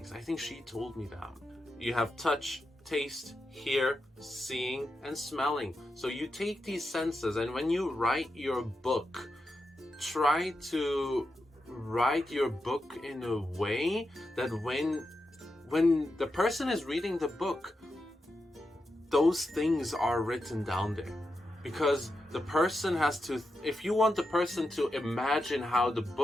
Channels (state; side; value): normal; both; correlation 0.88